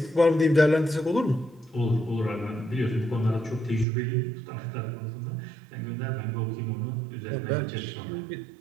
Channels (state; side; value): drops out; left; at 3.9 s